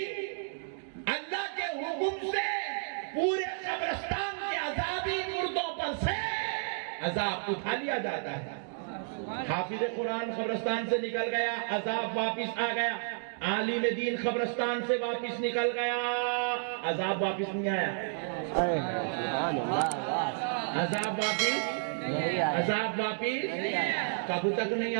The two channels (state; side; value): silent; left; digital silence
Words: اللہ کے حکم سے پورے قبرستان کے عذابی مردوں پر سے عذاب اٹھا لیا جاتا ہے۔ حافظ قرآن قبرستان سے نکل گیا، عذاب واپس آ گیا۔ عالم دین قبرستان سے واپس نکل گیا، عذاب واپس نہیں آیا۔ عذاب واپس کب تک نہیں